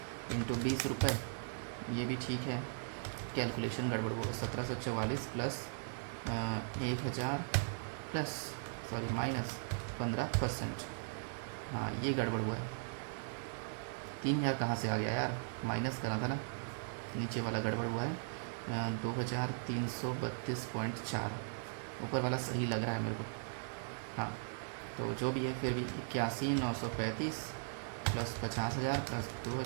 इंटू 20 रुपये, ये भी ठीक है। कैलकुलेशन गड़बड़ होगा, 1744 प्लस 1000 प्लस सॉरी माइनस 15%, हाँ ये गड़बड़ हुआ है। 3000 कहाँ से आ गया यार, माइनस करना था ना, नीचे वाला गड़बड़ हुआ है। 2332.4, ऊपर वाला सही लग रहा है मेरे को, हाँ तो जो भी है फिर भी 81,935 प्लस 50,000 प्लस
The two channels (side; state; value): left; silent; digital silence